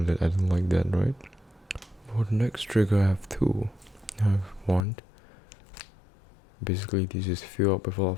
that I don't like that, right? For the next trigger I have two. I have one. Basically this is fill up with a lot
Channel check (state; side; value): drops out; right; at 4.9 s